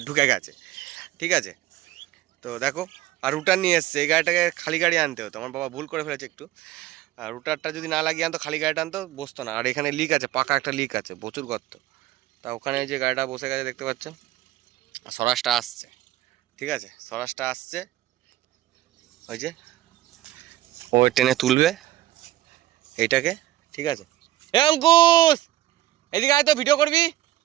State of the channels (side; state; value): left; quieter; 15.1 dB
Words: ঢুকে গেছে। ঠিক আছে, তো দেখো। আর রুটার নিয়ে এসছে, এই গাড়িটাকে খালি গাড়ি আনতে হতো, আমার বাবা ভুল করে ফেলেছে একটু। আর রুটারটা যদি না লাগিয়ে আনতো, খালি গাড়িটা আনতো, বসতো না। আর এখানে লিক আছে, পাকা একটা লিক আছে, প্রচুর গর্ত। তা ওখানে যে গাড়িটা বসে গেছে দেখতে পাচ্ছ, স্বরাজটা আসছে। ঠিক আছে, স্বরাজটা আসছে, ওই যে ও টেনে তুলবে এইটাকে। ঠিক আছে, এ অঙ্কুশ এদিকে আয় তো, ভিডিও করবি।